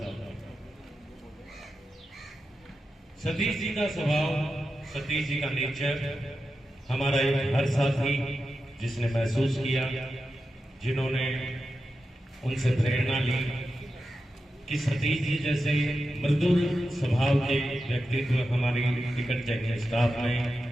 सतीश जी का स्वभाव, सतीश जी का नेचर, हमारा एक हर साथी जिसने महसूस किया जिन्होंने उनसे प्रेरणा ली कि सतीश जी जैसे मृदुल स्वभाव के व्यक्तित्व हमारी टिकट चेकिंग स्टाफ में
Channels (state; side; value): normal; both; correlation 0.90